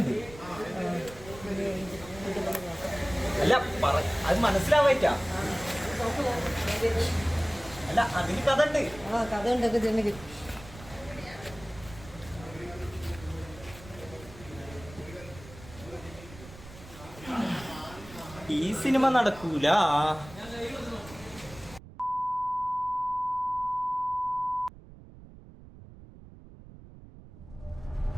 അല്ല അത് മനസ്സിലാവായിട്ടാ. അല്ല അതിന് കഥ ഉണ്ട്. കഥ ഉണ്ടൊക്കെ ചെന്നെങ്കിൽ ഈ സിനിമ നടക്കൂല.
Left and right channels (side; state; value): right; noise; rumble, 18 dB below the sound